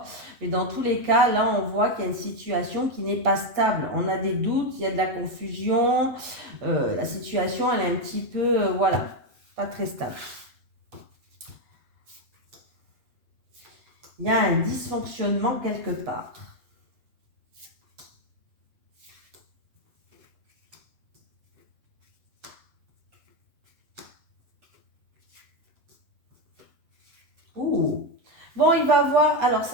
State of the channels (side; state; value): left; late; 7.9 ms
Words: Mais dans tous les cas, là, on voit qu'il y a une situation qui n'est pas stable. On a des doutes, il y a de la confusion. La situation, elle est un petit peu, pas très stable. Il y a un dysfonctionnement quelque part. Ouh. Bon, il va avoir, alors